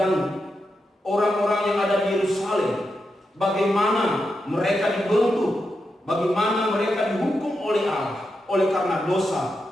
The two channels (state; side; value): normal; both; correlation 0.86